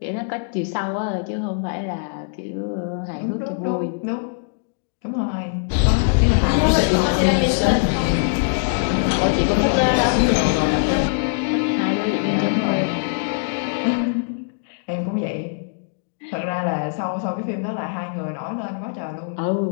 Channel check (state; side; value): silent; right; digital silence